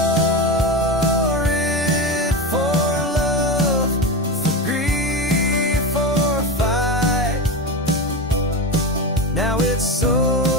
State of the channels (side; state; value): both; normal; correlation 0.20